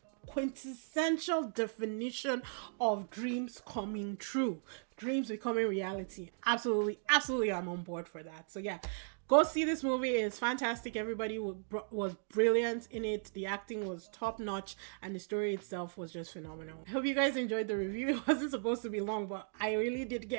quintessential definition of dreams coming true, dreams becoming reality. Absolutely, absolutely, I'm on board for that. So yeah, go see this movie. It's fantastic. Everybody was brilliant in it. The acting was top notch, and the story itself was just phenomenal. I hope you guys enjoyed the review. It wasn't supposed to be long, but I really did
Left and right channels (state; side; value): silent; left; digital silence